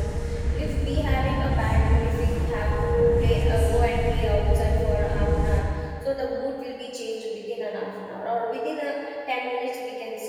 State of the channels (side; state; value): both; identical; correlation 1.00